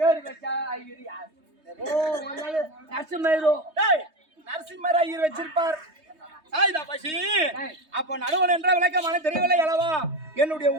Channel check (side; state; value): left; late; 3.2 ms